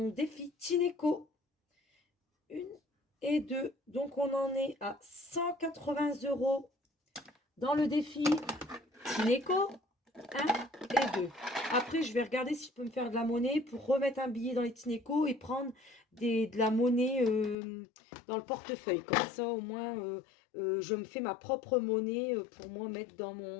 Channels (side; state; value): right; drops out; at 17.6 s